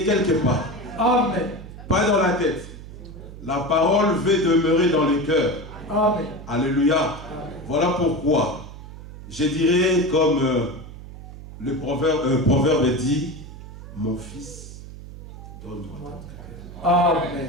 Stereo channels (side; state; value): right; noise; hum, 14 dB below the sound